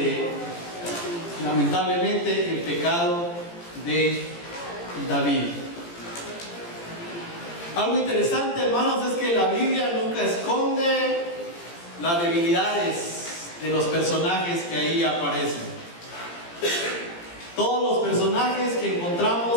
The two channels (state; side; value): late; right; 17 ms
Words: lamentablemente, el pecado de David. Algo interesante, hermanos, es que la Biblia nunca esconde las debilidades de los personajes que ahí aparecen. Todos los personajes que